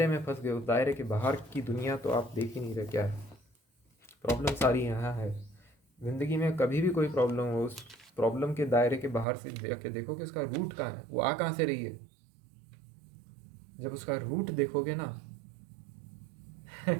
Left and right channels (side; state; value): left; drops out; at 9.2 s